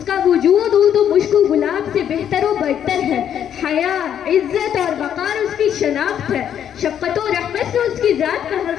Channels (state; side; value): quieter; right; 9.4 dB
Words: کا وجود عود و مشک و گلاب سے بہتر و برتر ہے۔ حیا، عزت اور وقار اس کی شناخت ہے۔ شفقت و رحمت سے اس کی ذات کا ہر